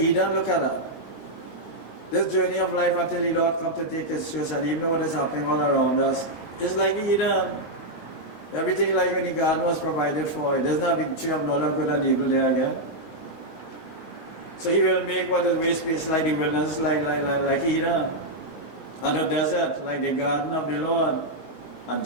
Look at that. This journey of life until the Lord comes to take His church, and even what is happening all around us, is like Eden. Everything like when the garden was provided for. There's not a big tree of knowledge of good and evil there again. So He will make what is waste place like the wilderness, like Eden. And the desert, like the garden of the Lord. And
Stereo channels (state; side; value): late; right; 19 ms